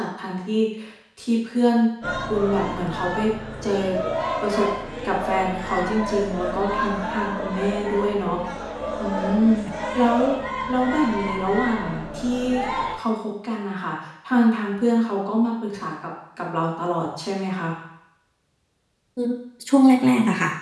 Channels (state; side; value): identical; both; correlation 1.00